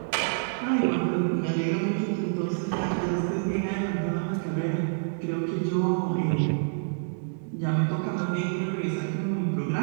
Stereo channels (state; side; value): silent; left; digital silence